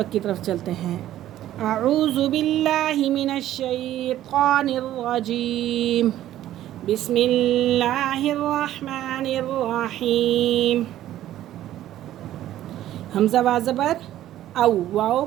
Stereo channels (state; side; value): quieter; left; 13.0 dB